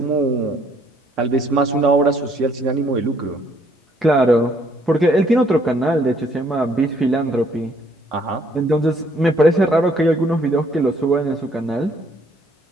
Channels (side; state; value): both; normal; correlation 0.65